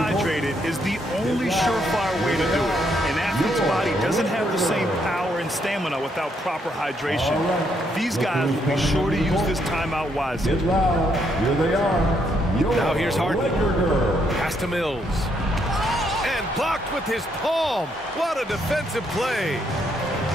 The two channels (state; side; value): normal; both; correlation 0.74